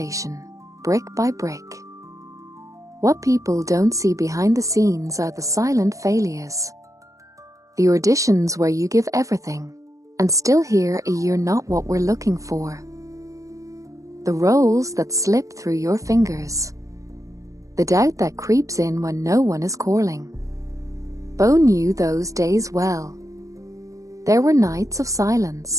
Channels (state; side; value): late; left; 0.16 ms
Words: brick by brick. What people don't see behind the scenes are the silent failures. The auditions where you give everything, and still hear a "you're not what we're looking for." The roles that slip through your fingers. The doubt that creeps in when no one is calling. Bo knew those days well. There were nights of